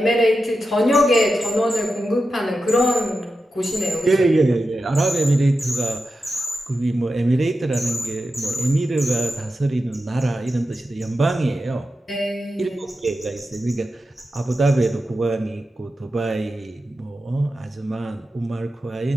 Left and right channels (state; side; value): normal; both; correlation 0.90